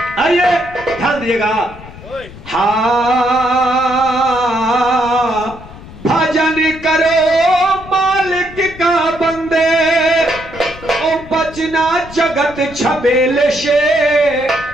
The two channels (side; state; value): left; noise; rumble, 17 dB below the sound